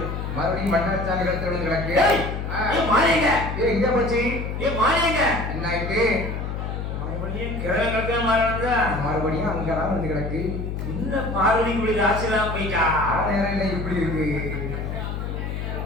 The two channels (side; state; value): left; noise; hum, 4 dB below the sound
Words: மறுபடியும் மன்னார்சாமி கழுத்து விழுந்து கிடக்கு. எங்க போச்சு? என்ன ஆயிட்டு? மறுபடியும் கிழமை கழுத்து மாலை வந்தா மறுபடியும் அங்கதான் வந்து கிடக்கு. இந்த பார்வதி குடி ராசிலாம் போயிட்டா. நேரம் இல்லை இப்படி இருக்கு.